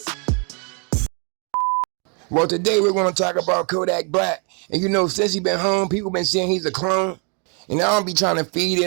Well, today we're going to talk about Kodak Black. And you know, since he's been home, people been saying he's a clone. And I don't be trying to feed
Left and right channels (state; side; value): quieter; left; 37.2 dB